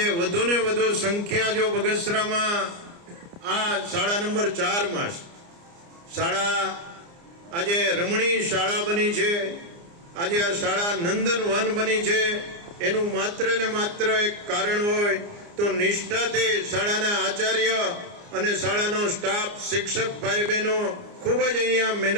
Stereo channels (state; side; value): late; left; 29 ms